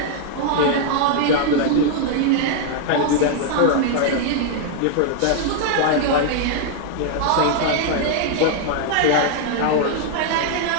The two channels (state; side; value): different; both; correlation 0.00